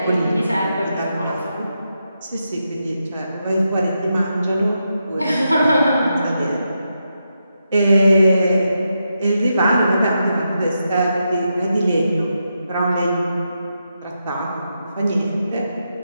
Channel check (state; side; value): inverted; both; correlation -0.85